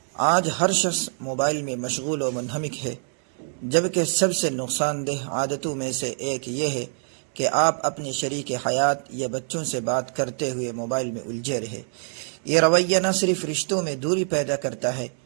آج ہر شخص موبائل میں مشغول و منہمک ہے، جبکہ سب سے نقصان دہ عادتوں میں سے ایک یہ ہے کہ آپ اپنے شریک حیات یا بچوں سے بات کرتے ہوئے موبائل میں الجھے رہے۔ یہ رویہ نہ صرف رشتوں میں دوری پیدا کرتا ہے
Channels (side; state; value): left; silent; digital silence